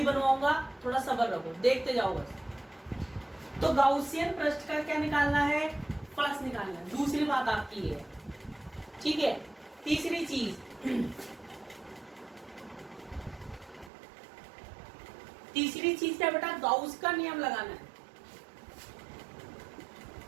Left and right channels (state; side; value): drops out; left; at 13.9 s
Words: बनवाऊंगा। थोड़ा सब्र रखो, देखते जाओ बस। तो गाउसियन पृष्ठ का क्या निकालना है? फलक्स निकालना है। दूसरी बात आपकी है, ठीक है। तीसरी चीज क्या बेटा? गाउस का नियम लगाना है।